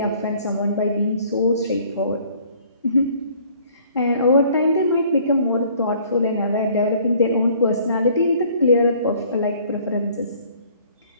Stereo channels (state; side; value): inverted; both; correlation -0.57